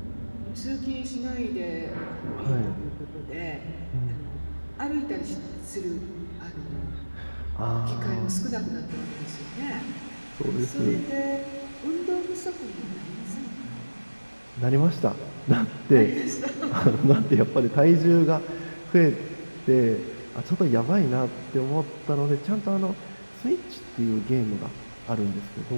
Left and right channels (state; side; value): inverted; both; correlation -1.00